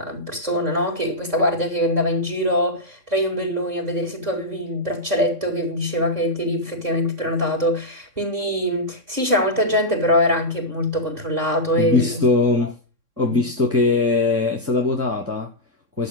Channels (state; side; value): late; left; 3.6 ms